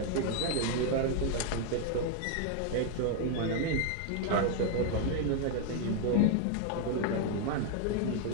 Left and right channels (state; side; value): different; both; correlation 0.00